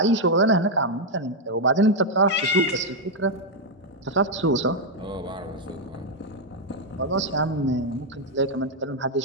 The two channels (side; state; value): both; normal; correlation 0.00